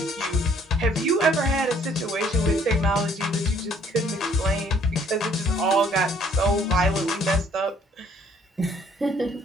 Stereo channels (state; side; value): normal; both; correlation 0.61